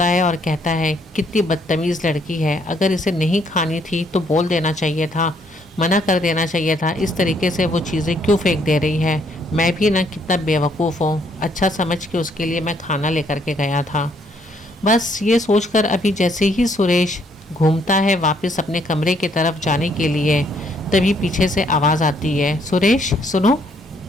है और कहता है, कितनी बदतमीज़ लड़की है, अगर इसे नहीं खानी थी तो बोल देना चाहिए था, मना कर देना चाहिए था, इस तरीके से वो चीज़ें क्यों फेंक दे रही है। मैं भी ना कितना बेवकूफ़ हूँ, अच्छा समझ के उसके लिए मैं खाना लेकर के गया था। बस ये सोचकर अभी जैसे ही सुरेश घूमता है वापस अपने कमरे की तरफ जाने के लिए, तभी पीछे से आवाज़ आती है, सुरेश सुनो।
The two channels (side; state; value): both; normal; correlation 0.69